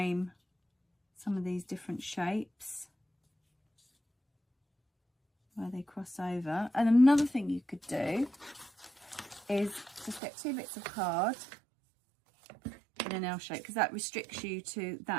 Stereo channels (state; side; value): drops out; left; at 10.2 s